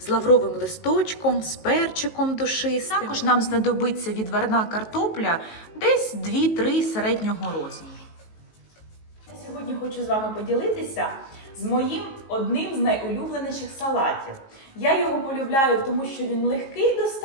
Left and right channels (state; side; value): late; right; 19 ms